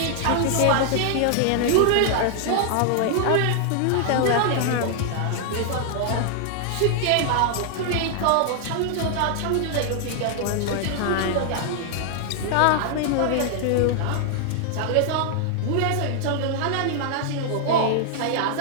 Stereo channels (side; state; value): both; different; correlation 0.00